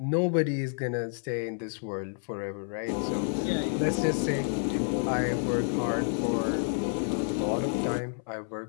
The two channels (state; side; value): silent; right; 58 dB below the other